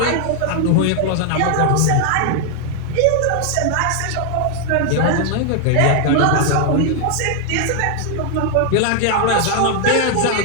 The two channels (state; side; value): different; both; correlation 0.00